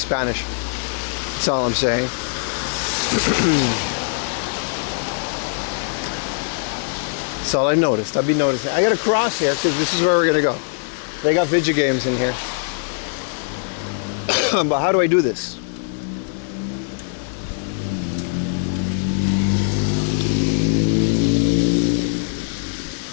That's all I'm saying. That's all I noticed. I've been noticing. I gotta cross here because this is where we're gonna go. They got video games in here. But how do I do this?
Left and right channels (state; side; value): silent; right; digital silence